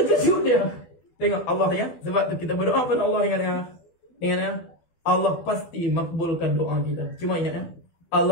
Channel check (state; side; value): late; right; 12 ms